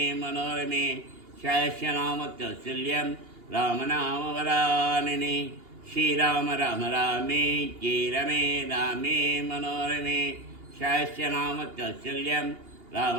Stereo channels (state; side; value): late; left; 2.8 ms